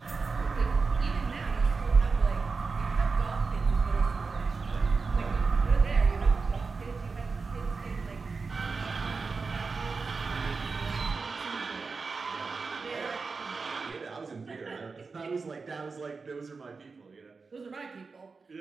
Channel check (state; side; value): quieter; left; 4.5 dB